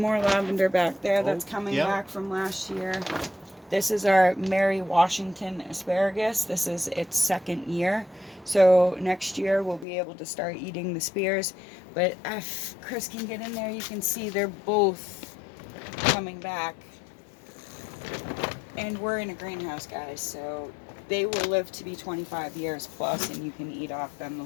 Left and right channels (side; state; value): right; drops out; at 9.9 s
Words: lavender back there that's coming back from last year. This is our Mary Washington asparagus. This is its 2nd year. So next year we'll be able to start eating the spears. But if Chris can get in there, you can see they're both coming back. And we're in a greenhouse, guys, so they will live to be 25 years plus, and you can eat off them the